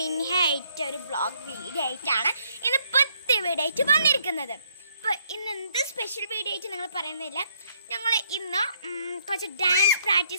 ആയിട്ട് ഒരു വ്ളോഗ് വീഡിയോ ആയിട്ടാണ് ഇന്ന് പുതിയ വീഡിയോ ആയിട്ട് വന്നിരിക്കുന്നത്. അപ്പോൾ ഇന്ന് എന്ത് സ്പെഷ്യൽ വീഡിയോ ആയിട്ട് നിങ്ങൾ പറയുന്നില്ല, ഞങ്ങൾ ഇന്ന് കുറച്ച് ഡാൻസ്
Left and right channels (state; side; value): inverted; both; correlation -0.70